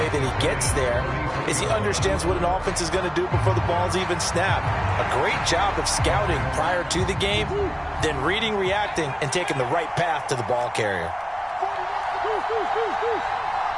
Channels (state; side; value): identical; both; correlation 1.00